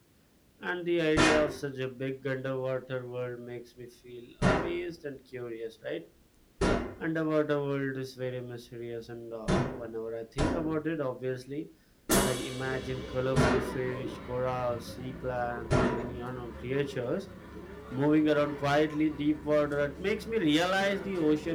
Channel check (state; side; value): identical; both; correlation 1.00